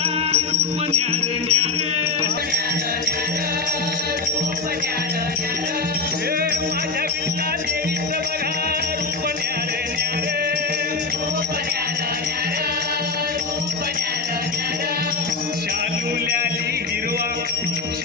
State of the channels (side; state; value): right; quieter; 3.9 dB